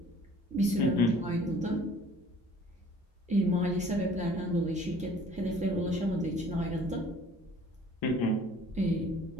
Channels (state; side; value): normal; both; correlation 0.53